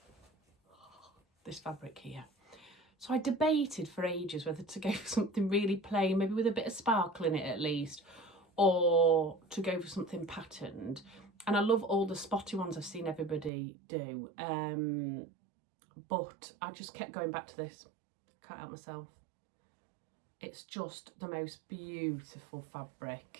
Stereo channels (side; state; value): left; drops out; at 13.5 s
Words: this fabric here. So I debated for ages whether to go for something really plain, maybe with a bit of sparkle in it at least, or to go for something patterned. And I love all the spotty ones I've seen everybody do, but I just kept going back to this. Can't help myself. It's just the most beautiful